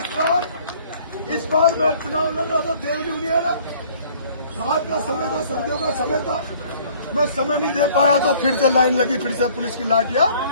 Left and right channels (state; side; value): inverted; both; correlation -0.56